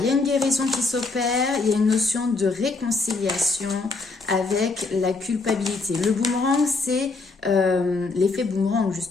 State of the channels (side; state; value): right; quieter; 3.8 dB